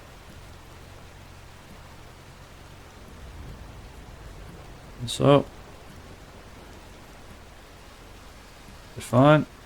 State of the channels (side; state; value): both; identical; correlation 1.00